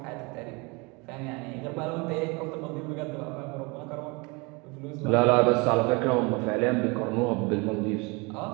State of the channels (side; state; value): left; quieter; 28.0 dB